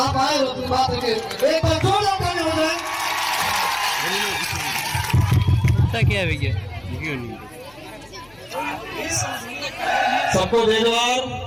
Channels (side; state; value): left; noise; hum, 29 dB below the sound